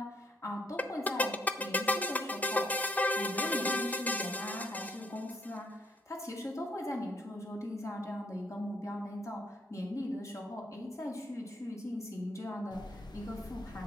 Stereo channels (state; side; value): normal; both; correlation 0.70